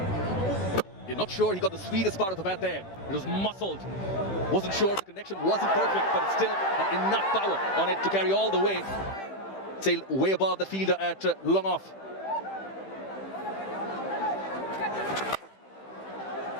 You're not sure he got the sweetest part of the bat there. It was muscled. Wasn't sure the connection wasn't perfect, but it's still enough power on it to carry all the way. Sailed way above the fielder at long off.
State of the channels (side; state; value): right; late; 15 ms